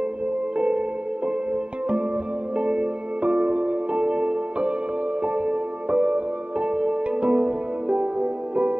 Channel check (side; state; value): left; late; 0.055 ms